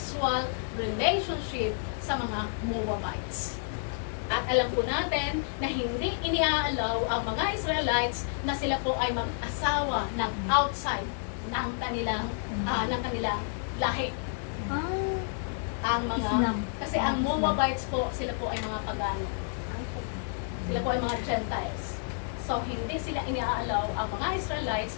relationship sa mga Moabites. At alam po natin na hindi iniaalaw ang mga Israelites na sila po ay mag-asawa ng outside ng kanilang lahi. Ang mga Islam. kasi ang Moabites po, sila po ay mga pagano. Sila po ay mga Gentiles. So hindi sila iniaalaw ang mga Israelites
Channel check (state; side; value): silent; right; digital silence